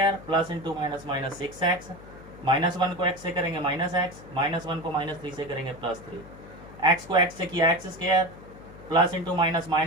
plus into minus 6x, -1 को x से करेंगे -x, -1 को -3 से करेंगे +3, x को x से किया x square, plus into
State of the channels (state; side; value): noise; left; hum, 18 dB below the sound